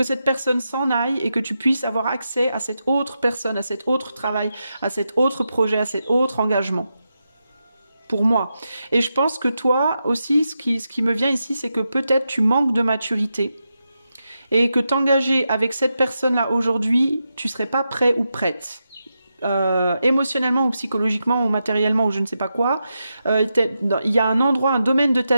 cette personne s'en aille et que tu puisses avoir accès à cette autre personne, à cet autre travail, à cet autre projet, à cet autre engagement. Pour moi. Et je pense que toi aussi, ce qui me vient ici, c'est que peut-être tu manques de maturité et que t'engager avec cette personne-là aujourd'hui, tu serais pas prêt ou prête. Émotionnellement ou psychologiquement ou matériellement ou je ne sais pas quoi, il y a un endroit, un domaine de ta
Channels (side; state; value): both; inverted; correlation -0.87